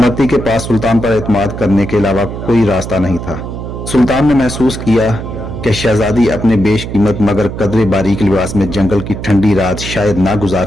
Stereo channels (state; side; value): noise; right; hum, 8 dB below the sound